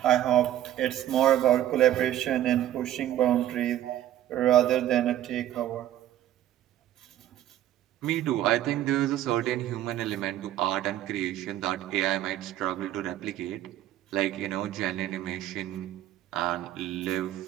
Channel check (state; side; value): quieter; left; 12.5 dB